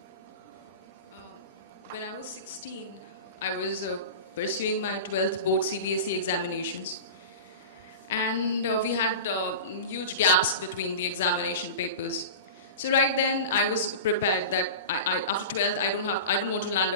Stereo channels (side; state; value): both; inverted; correlation -0.31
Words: When I was 16, I was pursuing my 12th board CBSE examinations. And we had huge gaps between the examination papers. So right then I was prepared that after 12th I don't want to land